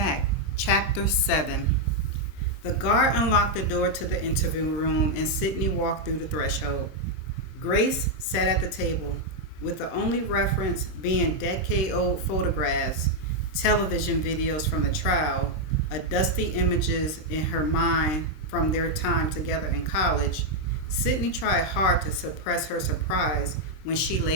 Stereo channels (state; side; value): late; right; 26 ms